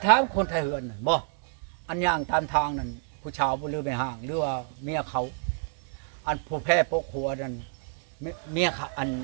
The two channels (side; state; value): left; silent; 59 dB below the other